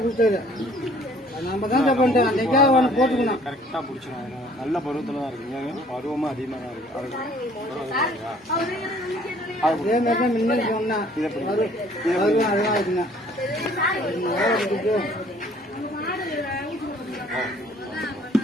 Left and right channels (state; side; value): normal; both; correlation 0.57